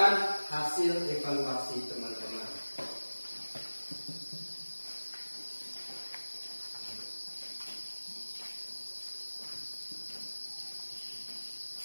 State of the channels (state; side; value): inverted; both; correlation -1.00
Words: hasil evaluasi teman-teman.